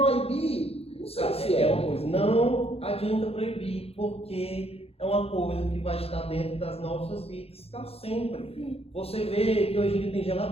não sei se é. Uma coisa, não adianta proibir, porque é uma coisa que vai estar dentro das nossas vidas para sempre. Você vê que hoje em dia tem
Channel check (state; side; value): late; right; 0.29 ms